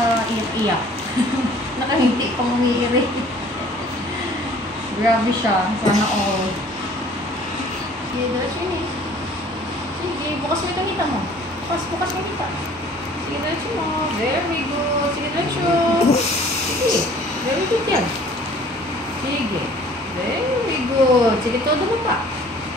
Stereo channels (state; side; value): normal; both; correlation 0.52